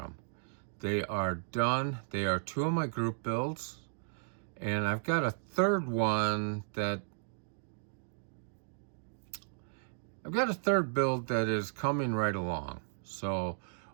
They are done. They are two of my group builds, and I've got a third one that build that is coming right along. So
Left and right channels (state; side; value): silent; left; digital silence